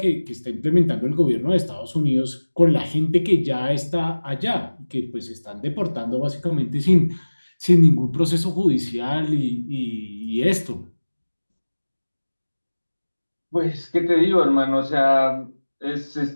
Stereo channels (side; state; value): both; inverted; correlation -1.00